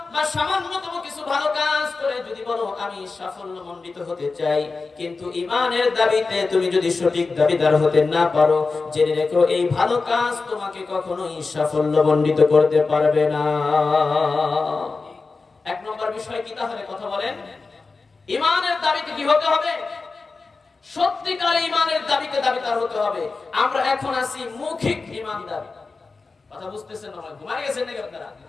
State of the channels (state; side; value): quieter; right; 4.1 dB